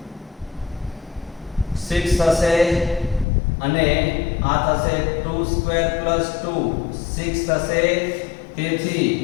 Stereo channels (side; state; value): right; drops out; at 3.2 s